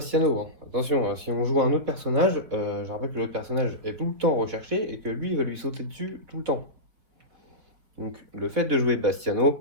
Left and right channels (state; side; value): late; left; 4.7 ms